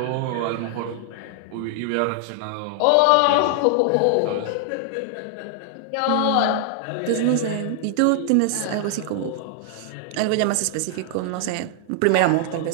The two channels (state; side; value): different; both; correlation 0.00